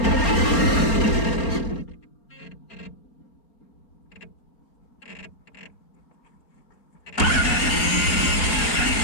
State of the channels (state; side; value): late; right; 4.3 ms